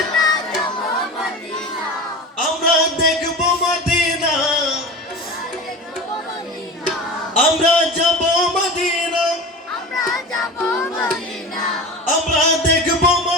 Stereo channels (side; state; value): both; normal; correlation 0.32